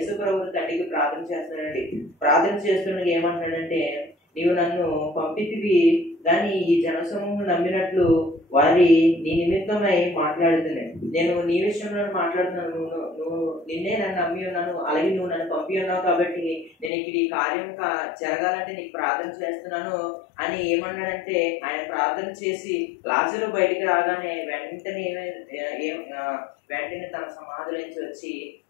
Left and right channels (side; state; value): right; drops out; at 16.9 s